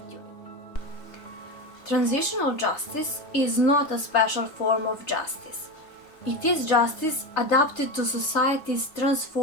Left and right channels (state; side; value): late; right; 3.3 ms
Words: Transitional justice is not a special form of justice. It is justice adapted to societies